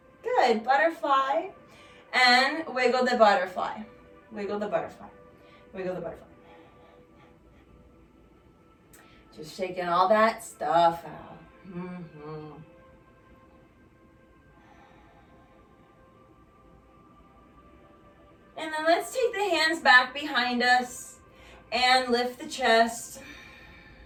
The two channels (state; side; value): identical; both; correlation 1.00